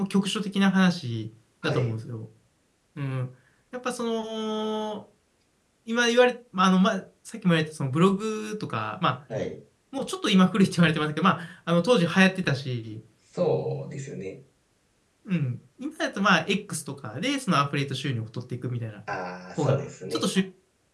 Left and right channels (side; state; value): both; identical; correlation 1.00